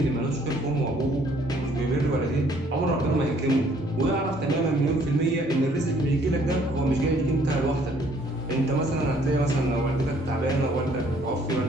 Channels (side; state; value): both; normal; correlation 0.62